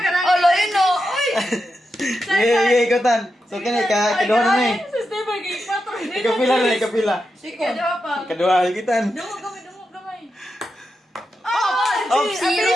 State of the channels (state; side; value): normal; both; correlation 0.88